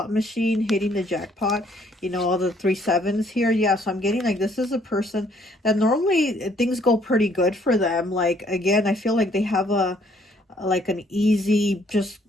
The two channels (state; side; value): normal; both; correlation 0.64